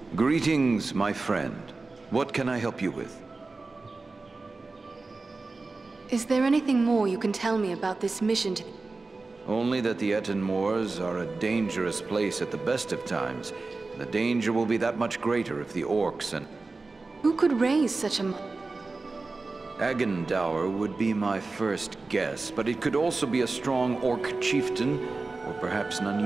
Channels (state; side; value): quieter; left; 3.7 dB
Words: Greetings, my friend. What can I help you with? Is there anything more you can tell me about this mission to... Only that the Ettenmoors are a dangerous place at the best of times. The danger will be that much greater if the orcs and... Who could raise such a... Agendour would be my first guess, but it could also be a strong orc chieftain, or perhaps an